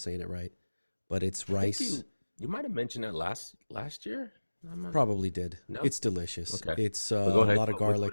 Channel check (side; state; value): both; inverted; correlation -1.00